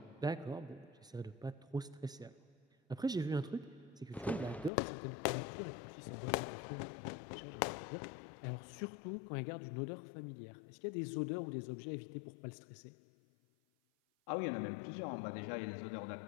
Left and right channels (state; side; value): drops out; right; at 4.7 s